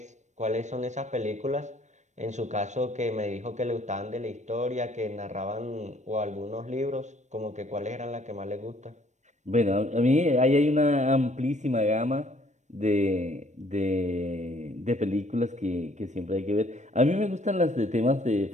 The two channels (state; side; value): late; left; 0.34 ms